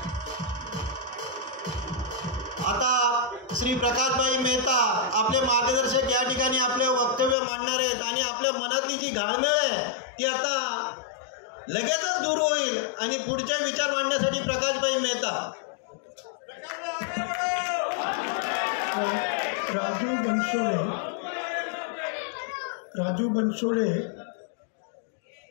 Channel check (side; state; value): right; drops out; at 7.4 s